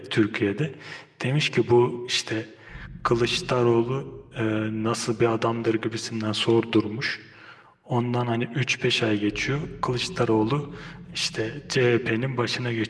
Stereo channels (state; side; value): identical; both; correlation 1.00